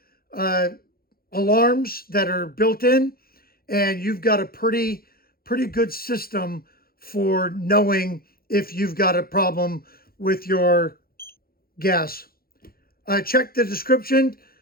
alarms that are built in, and you've got a pretty good system for knowing if you've got a problem with your gas. Check the description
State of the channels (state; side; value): late; right; 0.43 ms